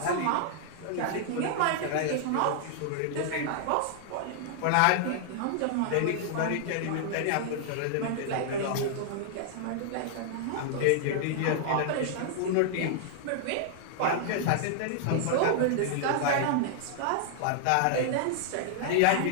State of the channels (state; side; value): different; both; correlation -0.01